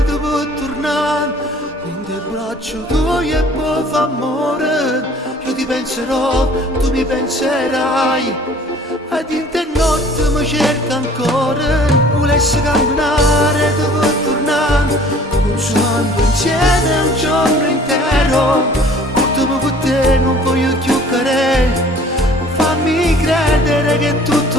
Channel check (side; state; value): both; normal; correlation 0.52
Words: dopo tornare in te braccio tuoi e poi fa amore. Io ti penserò, tu mi penserai, ed in te notte mi cerca ancora. Volessi camminare dopo tornare, consumando insieme un giorno intero. Portami con te, non voglio più cadere. Fammi credere che è